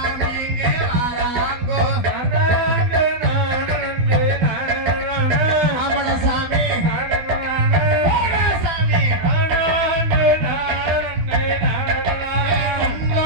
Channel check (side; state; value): left; late; 12 ms